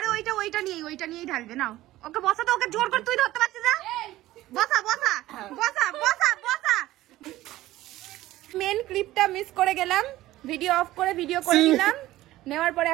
ওইটা নিয়েই ঢালবে। নাও ওকে বসা, তো ওকে জোর করে তুই ধরতে পারছিস না। বসা বসা বসা বসা বসা। মেন ক্লিপটা মিস করে গেলাম, ভিডিও অফ করে ভিডিও করে নিলাম, নেওয়ার পরে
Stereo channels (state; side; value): quieter; left; 16.0 dB